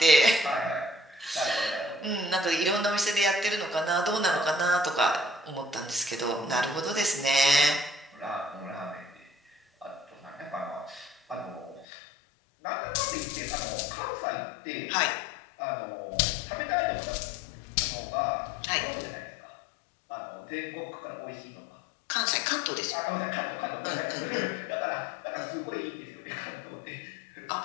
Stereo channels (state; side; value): drops out; right; at 11.9 s